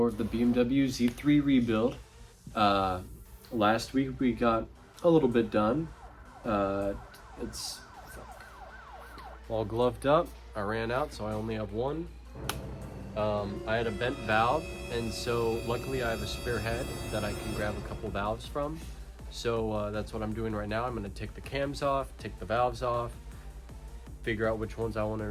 of the BMW Z3 rebuild. Last week we got a little bit done. It's all gloved up. I ran out, so I only have one. I had a bent valve, and so luckily I have a spare head that I can grab a couple valves from. So that's what I'm doing right now. I'm going to take the cams off, take the valves off, figure out which ones I want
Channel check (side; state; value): both; identical; correlation 1.00